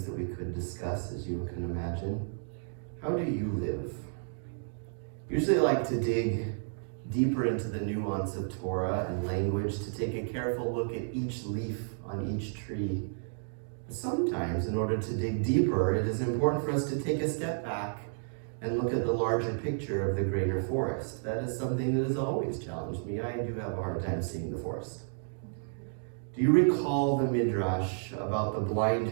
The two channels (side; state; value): left; silent; digital silence